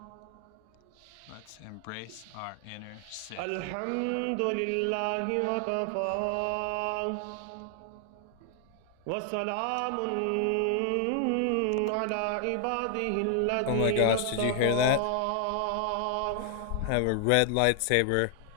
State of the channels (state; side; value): different; both; correlation 0.00